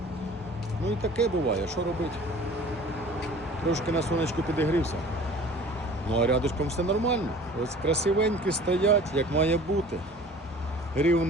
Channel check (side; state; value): both; normal; correlation 0.46